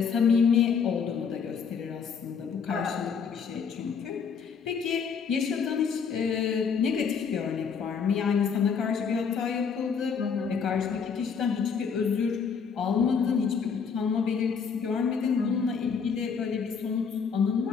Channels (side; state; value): right; quieter; 6.2 dB